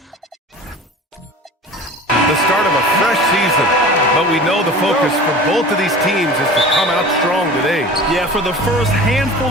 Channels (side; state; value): both; normal; correlation 0.38